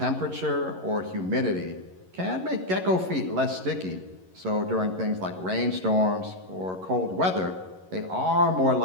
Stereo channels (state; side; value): late; left; 11 ms